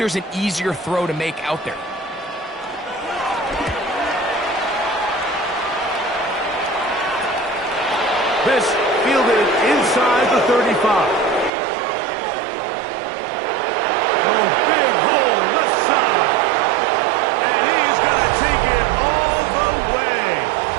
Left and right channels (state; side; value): drops out; left; at 11.5 s